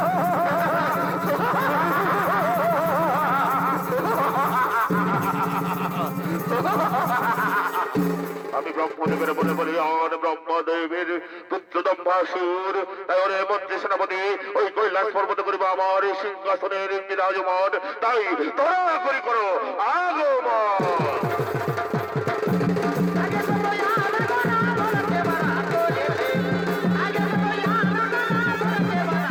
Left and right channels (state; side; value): identical; both; correlation 1.00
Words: আমি ব্রহ্মদেবের বলে বলি আর ব্রহ্মদেবের পুত্র দম্বাসুর, তাই ওরে মন্ত্রী সেনাপতি ওই কৈলাস পর্বত করিব আমার সিংহাসনের বিরাজমান, তাই তোরা করি করো আগমন।